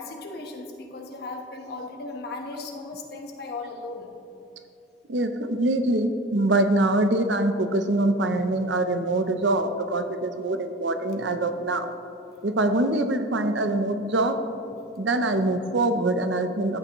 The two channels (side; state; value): both; normal; correlation 0.32